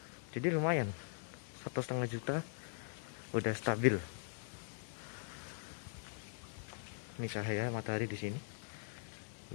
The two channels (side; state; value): right; silent; digital silence